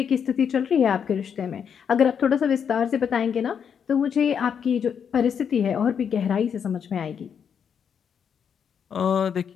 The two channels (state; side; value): quieter; right; 7.5 dB